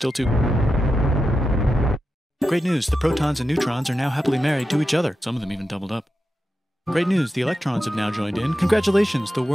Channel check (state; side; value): normal; both; correlation 0.90